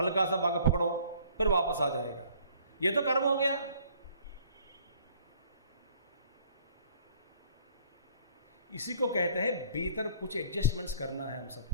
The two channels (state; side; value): inverted; both; correlation -0.57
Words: सा भागा पकड़ो, फिर वापस आ जाएगा। ये तो कर्म हो गया। इसी को कहते हैं भीतर कुछ एडजस्टमेंट्स करना है हम